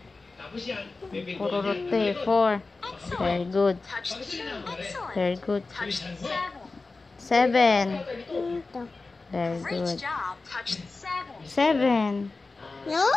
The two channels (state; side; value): quieter; right; 3.7 dB